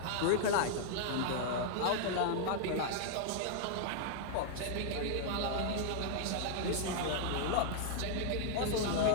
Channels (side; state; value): both; different; correlation -0.01